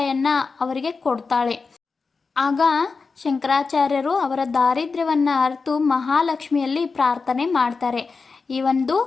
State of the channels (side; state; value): right; quieter; 4.6 dB